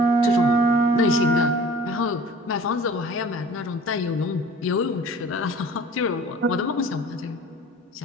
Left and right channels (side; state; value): both; normal; correlation 0.45